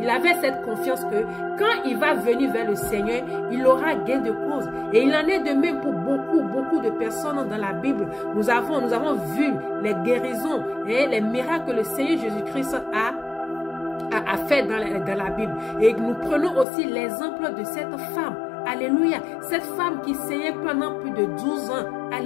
il avait cette confiance que quand il va venir vers le Seigneur, il aura gain de cause. Et il en est de même pour beaucoup de personnes dans la Bible. Nous avons vu les guérisons et les miracles que le Seigneur Jésus-Christ a fait dans la Bible. Et nous prenons aussi l'exemple de cette femme. Alléluia. Cette femme qui saignait pendant plus de 12 ans.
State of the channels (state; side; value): drops out; right; at 16.7 s